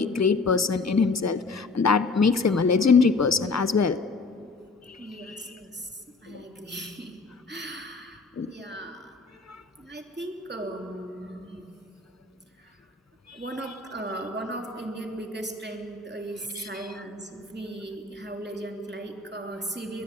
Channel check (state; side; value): quieter; right; 3.9 dB